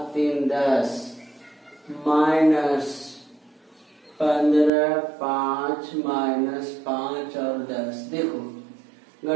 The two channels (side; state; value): left; drops out; at 4.7 s